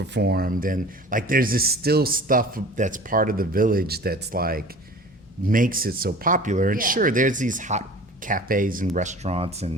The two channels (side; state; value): both; normal; correlation 0.42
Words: and like there's this still stuff that's part of the village that's like makes it so popular. And Yeah. sure, there's these hot cafes and restaurants,